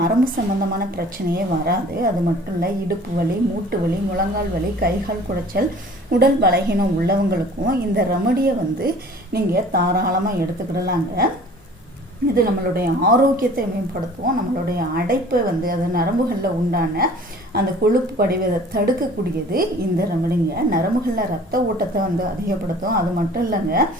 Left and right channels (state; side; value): normal; both; correlation 0.48